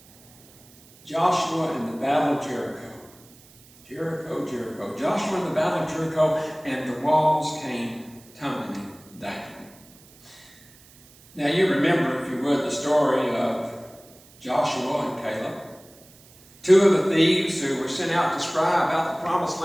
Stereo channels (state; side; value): noise; right; hiss, 26 dB below the sound